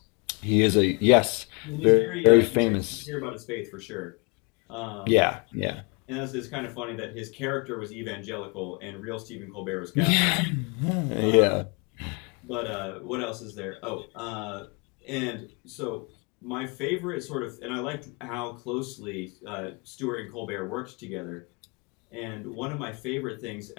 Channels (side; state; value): right; quieter; 31.9 dB